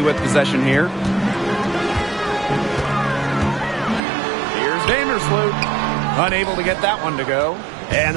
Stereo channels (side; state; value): left; drops out; at 4.0 s